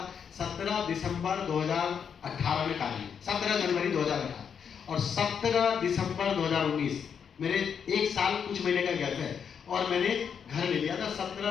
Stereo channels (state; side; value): quieter; right; 7.2 dB